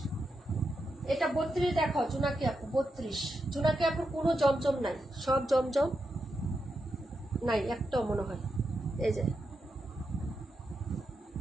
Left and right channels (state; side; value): normal; both; correlation 0.86